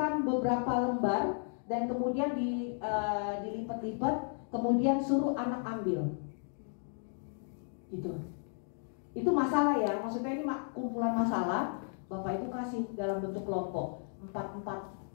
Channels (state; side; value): silent; right; 55 dB below the other